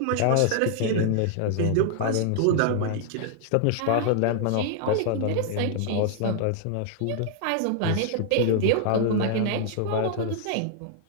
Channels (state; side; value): different; both; correlation -0.01